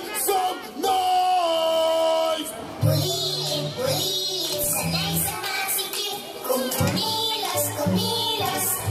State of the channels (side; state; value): both; identical; correlation 1.00